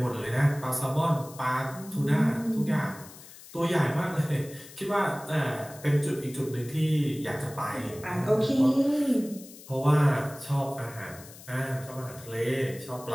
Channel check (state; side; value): noise; left; hiss, 18 dB below the sound